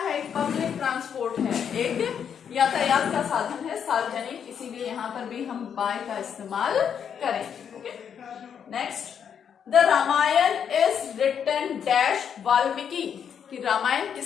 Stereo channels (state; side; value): quieter; right; 7.9 dB